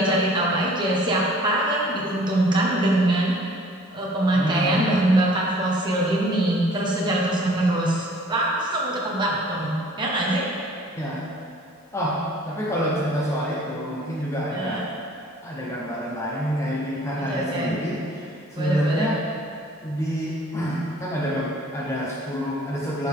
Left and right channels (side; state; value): both; normal; correlation 0.53